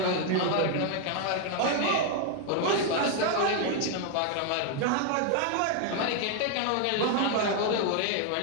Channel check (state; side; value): different; both; correlation 0.01